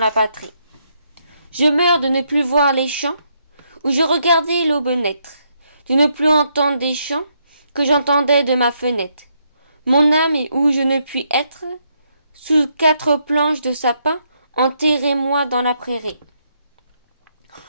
patrie. Je meurs de ne plus voir les champs, où je regardais l'aube naître, de ne plus entendre des chants que j'entendais de ma fenêtre. Mon âme est où je ne puis être, sous 4 planches de sapin, enterrez-moi dans la prairie.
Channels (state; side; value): inverted; both; correlation -0.76